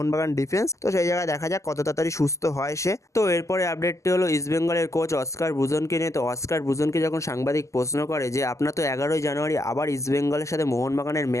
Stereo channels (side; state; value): right; late; 0.15 ms